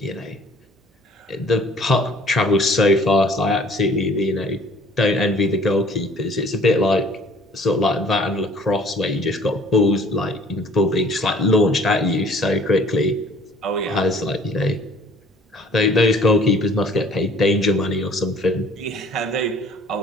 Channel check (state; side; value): normal; both; correlation 0.53